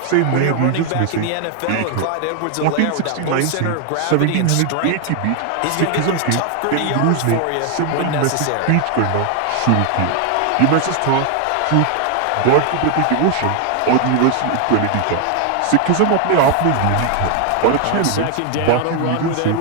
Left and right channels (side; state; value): both; different; correlation 0.00